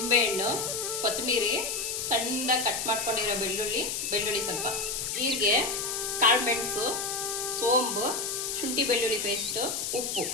ಕೊತ್ತಂಬರಿ, ಸಣ್ಣದಾಗಿ ಕಟ್ ಮಾಡ್ಕೊಂಡಿರೋ ಬೆಳ್ಳುಳ್ಳಿ ಸ್ವಲ್ಪ, ಜೀರಿಗೆ, ಕಾಳು ಮೆಣಸು, ಸೋಂಬು, ಶುಂಠಿ ಬೆಳ್ಳುಳ್ಳಿ ಪೇಸ್ಟು, ಉಪ್ಪು,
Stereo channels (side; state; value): left; noise; hiss, 2 dB below the sound